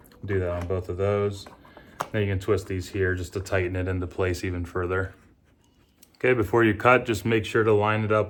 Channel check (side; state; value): both; identical; correlation 1.00